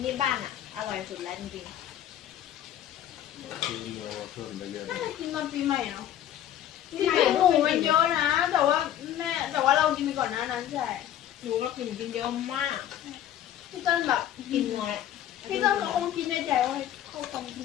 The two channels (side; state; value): right; quieter; 11.4 dB